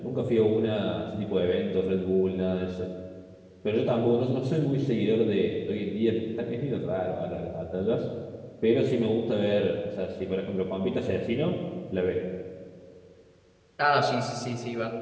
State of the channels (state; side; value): identical; both; correlation 1.00